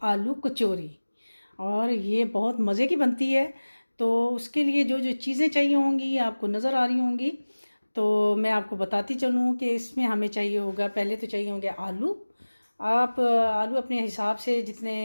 आलू कचौरी। और ये बहुत मज़े की बनती है। तो उसके लिए जो जो चीज़ें चाहिए होंगी आपको नज़र आ रही होंगी, तो मैं आपको बताती चलूँ कि इसमें हमें चाहिए होगा। पहले तो चाहिए होंगे आलू। आप आलू अपने हिसाब से, जितने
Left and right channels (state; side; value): inverted; both; correlation -1.00